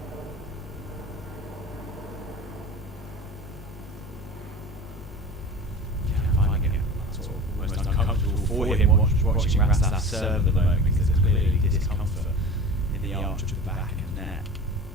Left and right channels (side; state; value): both; normal; correlation 0.35